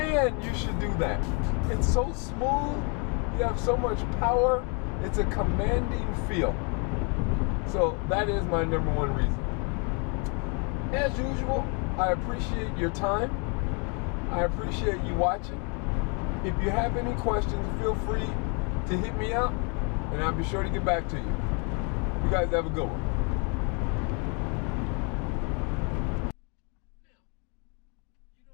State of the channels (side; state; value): right; quieter; 35.0 dB